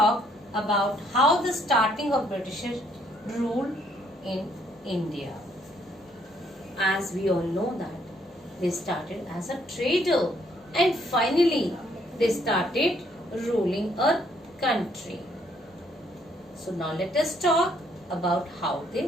about how the starting of British rule in India. As we all know that they started as a trader and finally they started ruling a country. So now let us talk about how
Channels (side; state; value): both; normal; correlation 0.68